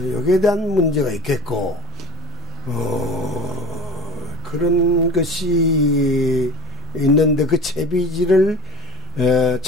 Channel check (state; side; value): normal; both; correlation 0.35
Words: 대한 문제가 있겠고, 그런 것이 있는데 그 채비지를